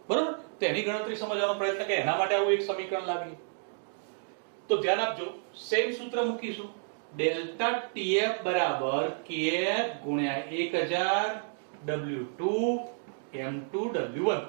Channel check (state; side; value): silent; left; digital silence